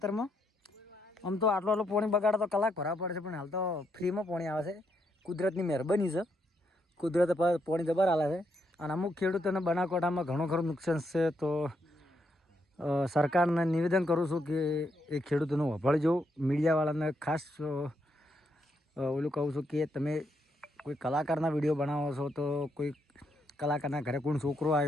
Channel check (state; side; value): normal; both; correlation 0.78